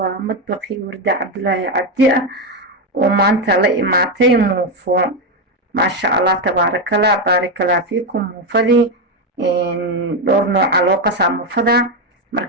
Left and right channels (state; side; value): normal; both; correlation 0.09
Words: وردة عبد الله عبدي وما أنت لي معطي موفو ما شاء الله تبارك الله بارك الله فيكم موفدي دور نوع علاقة موفدا